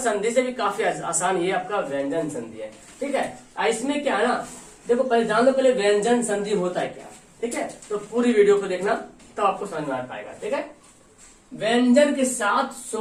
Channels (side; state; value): both; identical; correlation 1.00